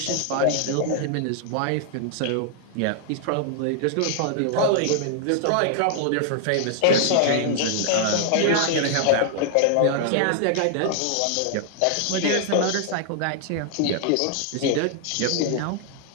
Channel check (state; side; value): different; both; correlation 0.00